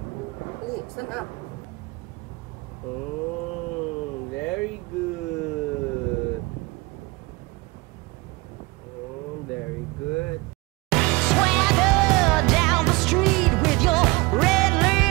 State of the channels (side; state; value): left; quieter; 23.8 dB